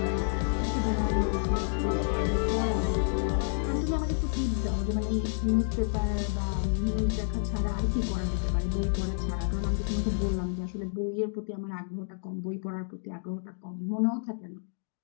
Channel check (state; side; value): silent; right; digital silence